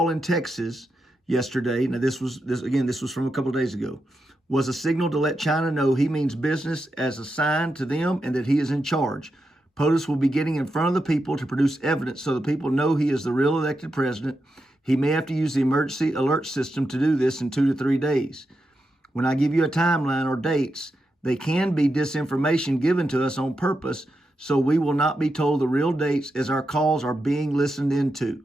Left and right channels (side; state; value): both; normal; correlation 0.87